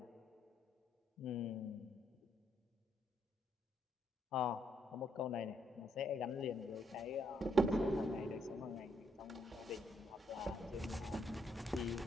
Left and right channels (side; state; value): both; normal; correlation 0.74